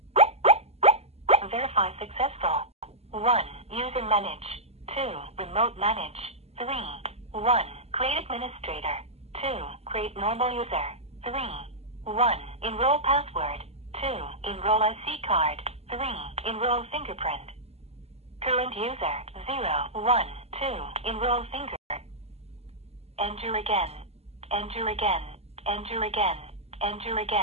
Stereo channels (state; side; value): late; left; 0.30 ms